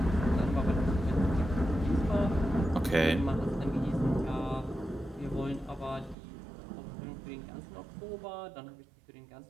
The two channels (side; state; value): left; drops out; at 6.2 s